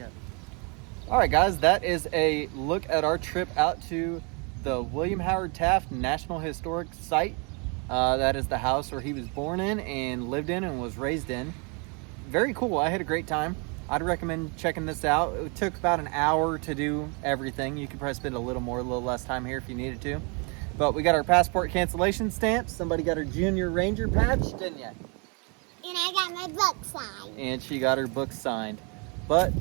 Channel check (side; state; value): left; quieter; 33.6 dB